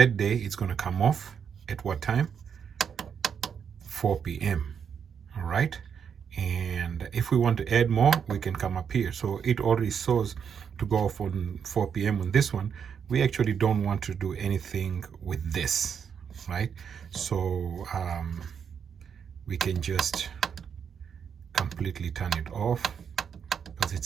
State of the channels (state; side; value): quieter; left; 7.3 dB